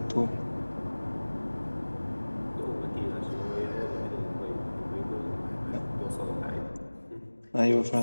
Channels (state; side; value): inverted; both; correlation -1.00